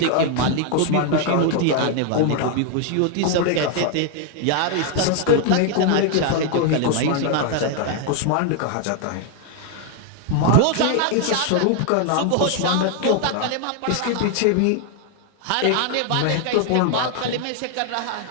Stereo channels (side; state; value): both; different; correlation 0.00